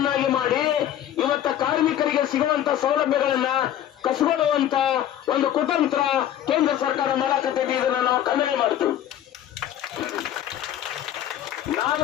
ಮಾಡಿ ಇವತ್ತು ಕಾರ್ಮಿಕರಿಗೆ ಸಿಗುವಂತ ಸೌಲಭ್ಯಗಳನ್ನ ಕಸಿಗೊಳ್ಳುವಂತ ಒಂದು ಕುತಂತ್ರ ಕೇಂದ್ರ ಸರ್ಕಾರ ಮಾಡಕತ್ತಿದೆ. ಇದನ್ನ ನಾವು ಖಂಡನೆ ಮಾಡ್ತೀವಿ.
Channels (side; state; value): right; quieter; 11.2 dB